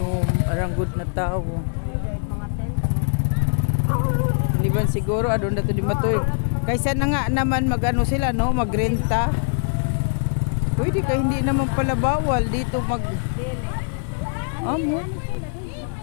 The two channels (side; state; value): right; silent; 64 dB below the other